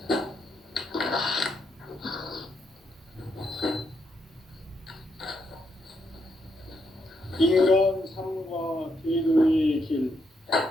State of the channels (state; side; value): normal; both; correlation 0.78